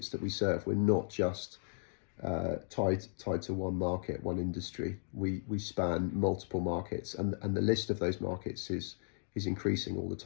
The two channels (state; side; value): silent; right; digital silence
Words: that we serve. We're not just tied to one market, one industry. We span multiple markets, and the list of those markets is increasing all the